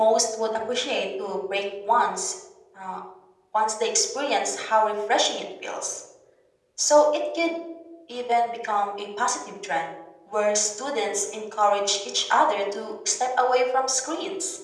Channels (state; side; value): identical; both; correlation 1.00